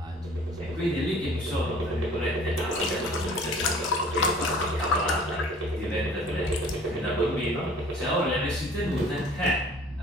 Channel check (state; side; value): normal; both; correlation 0.50